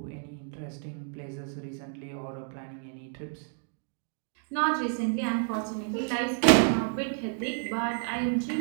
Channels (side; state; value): left; silent; 58 dB below the other